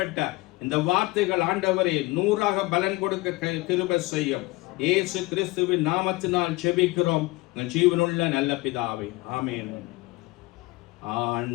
இந்த வார்த்தைகள் ஆண்டவரே 100ஆக பலன் கொடுக்க கிருபை செய்யும். இயேசு கிறிஸ்துவின் நாமத்தினால் ஜெபிக்கிறோம் ஜீவனுள்ள நல்ல பிதாவே, ஆமென்.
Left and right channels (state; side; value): quieter; right; 21.7 dB